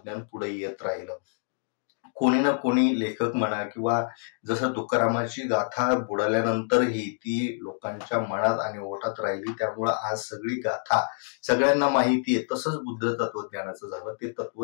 पुढे येत राहिलं. कोणी ना कोणी लेखक म्हणा किंवा जसं तुकारामाची गाथा बुडाल्यानंतरही ती लोकांच्या मनात आणि ओठात राहिली, त्यामुळं आज सगळी गाथा सगळ्यांना माहिती आहे. तसंच बुद्ध तत्वज्ञानाचं झालं. ते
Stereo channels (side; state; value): right; silent; 59 dB below the other